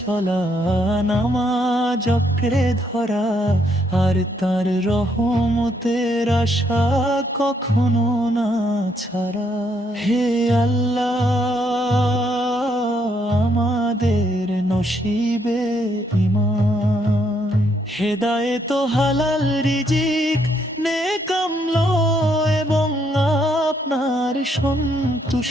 নামাজ আঁকড়ে ধরা, আর তার রহমতের আশা কখনো না ছাড়া। হে আল্লাহ, আমাদের নসিবে ঈমান, হেদায়েত, হালাল রিজিক, নেক আমল এবং আপনার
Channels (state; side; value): normal; both; correlation 0.73